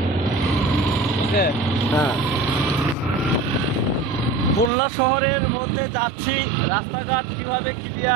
ওকে। হ্যাঁ খুলনা শহরের মধ্যে যাচ্ছি, রাস্তাঘাট কীভাবে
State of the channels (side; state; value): left; drops out; at 4.7 s